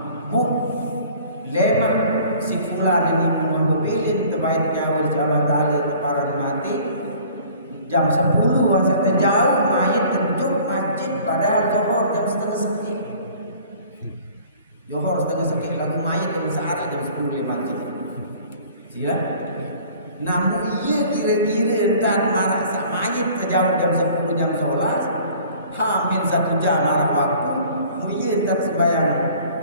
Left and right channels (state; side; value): inverted; both; correlation -0.50